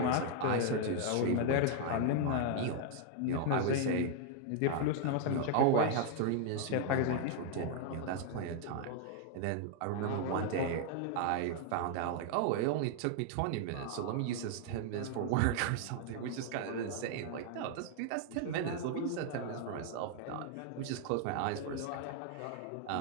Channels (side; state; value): both; different; correlation 0.00